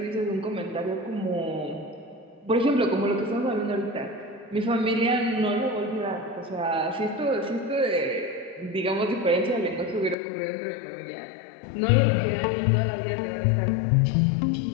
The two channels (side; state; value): right; drops out; at 10.2 s